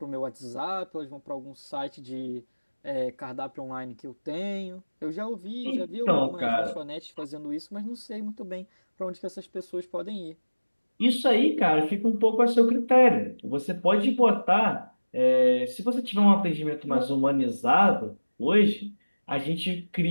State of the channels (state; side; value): inverted; both; correlation -1.00